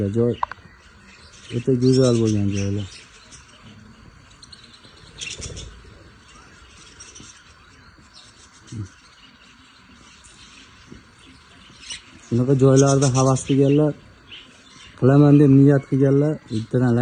Joy o'ta go'zal bo'lgan joylar. Shunaqa joylarda havas qilganlar, qilaman deb niyat qilganlar, bittadan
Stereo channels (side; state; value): both; identical; correlation 1.00